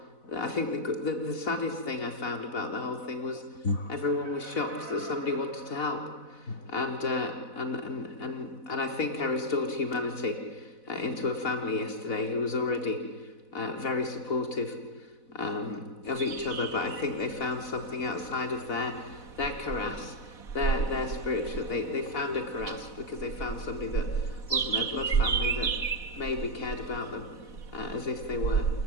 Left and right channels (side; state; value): right; late; 4.0 ms